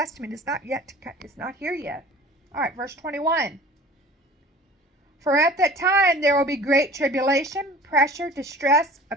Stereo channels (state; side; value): normal; both; correlation 0.44